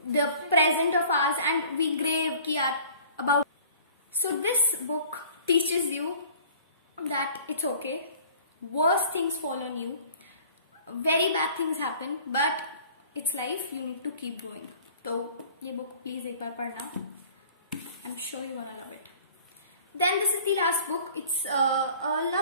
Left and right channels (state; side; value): inverted; both; correlation -0.49